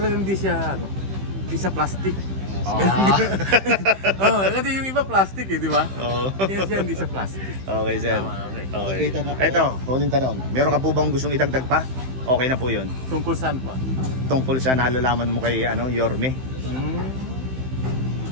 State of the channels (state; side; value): late; left; 15 ms